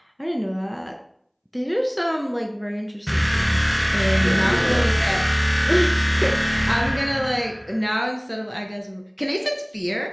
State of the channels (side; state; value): both; identical; correlation 1.00